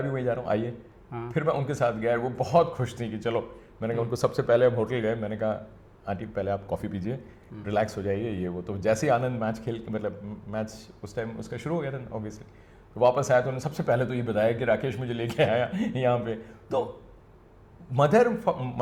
भी वहीं जा रहा हूँ, आइए। फिर मैं उनके साथ गया, वो बहुत खुश थी कि चलो। मैंने कहा उनको सबसे पहले हम होटल गए, मैंने कहा आंटी पहले आप कॉफ़ी पीजिए, रिलैक्स हो जाइए, ये वो। तो जैसे ही आनंद मैच उस टाइम उसका शुरू हो गया था ऑब्वियसली, तो वापस आया तो उन्होंने सबसे पहले तो ये बताया कि राकेश मुझे लेके आया यहाँ पे। तो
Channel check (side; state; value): both; identical; correlation 1.00